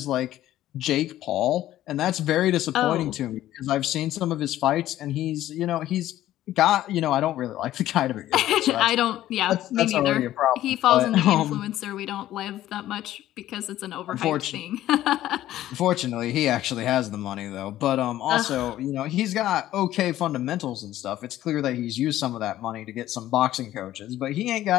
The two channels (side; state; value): right; quieter; 13.7 dB